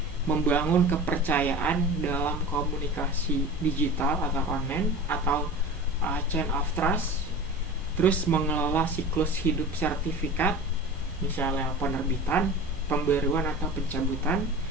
membangun kepercayaan dalam komunikasi digital atau online atau chain of trust. Terus mengelola siklus hidup sertifikat, misalnya penerbitan, pembaruan atau pencabutan.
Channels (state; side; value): normal; both; correlation 0.35